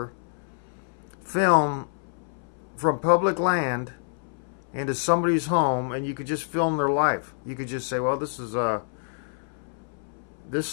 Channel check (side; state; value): right; silent; 60 dB below the other